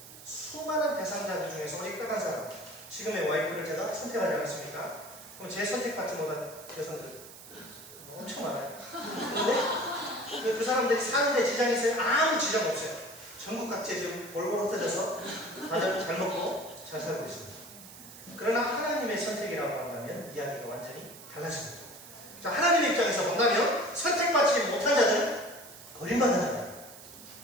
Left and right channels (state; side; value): noise; right; hiss, 17 dB below the sound